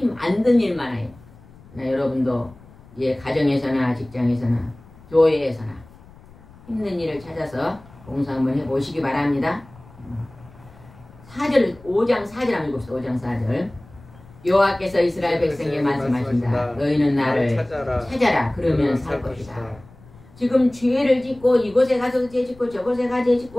안 든 일만 해요. 여러분도 가정에서나 직장에서나 교회에서나 힘든 일을 찾아서 봉사 한번 해보시기 바랍니다. 5장 4절 한번 읽읍시다. 5장 4절 여호와께서 이스라엘 백성에게 말씀하신다. 너희는 나를 찾아라. 그러면 살 것이다. 지금 죄를 짓고 이곳에 가서 죄 짓고 저곳에 가서 죄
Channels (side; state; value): left; noise; rumble, 23 dB below the sound